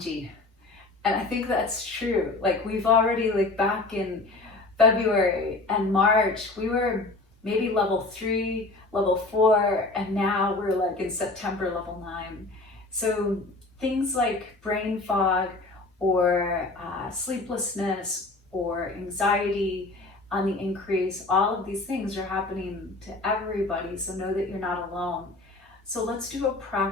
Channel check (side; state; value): right; quieter; 3.2 dB